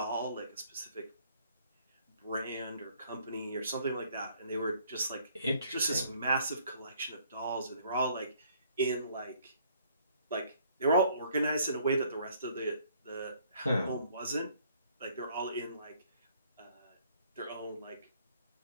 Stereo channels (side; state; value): both; inverted; correlation -0.61